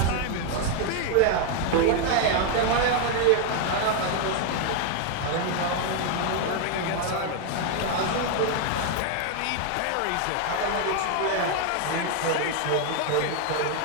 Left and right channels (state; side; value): different; both; correlation 0.00